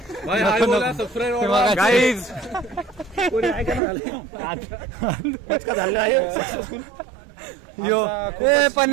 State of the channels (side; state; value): left; drops out; at 3.8 s